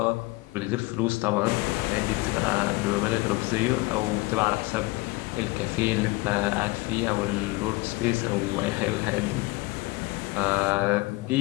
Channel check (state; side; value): quieter; right; 22.7 dB